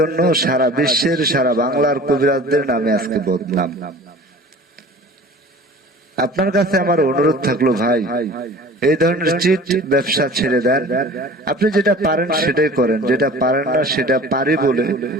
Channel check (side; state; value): both; normal; correlation 0.43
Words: সারা বিশ্বের, সারা বাংলার কবিরাজদের নামে আজকে বদনাম। আপনার কাছে আমার অনুরোধ থাকলো, ভাই এই ধরনের চিট ব্যবসা ছেড়ে দেন। আপনি যেটা পারেন সেটাই করেন, যেটা পারেন না সেটা পারি বলে